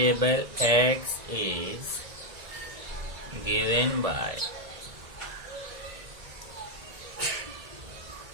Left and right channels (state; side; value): late; left; 1.9 ms